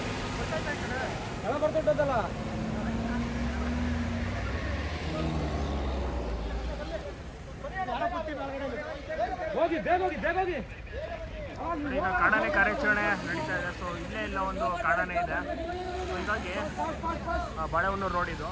ಬರ್ತದಲ್ಲ ಹೋಗಿ ಬೇಗ ಹೋಗಿ ಬೇಗ ಹೋಗಿ. ಈಗ ಕಾಡಾನೆ ಕಾರ್ಯಾಚರಣೆ ನಡೀತಾ ಇದೆ. ಸೊ ಇಲ್ಲೇ ಇಲ್ಲ ಒಂದು ಕಾಡಾನೆ ಇದೆ. ಸೊ ಹೀಗಾಗಿ ಬಾಳೆಹೊನ್ನೂರು ರೋಡ್ ಇದು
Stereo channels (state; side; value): identical; both; correlation 1.00